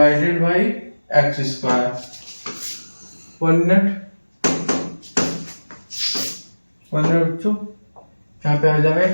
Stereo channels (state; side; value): inverted; both; correlation -1.00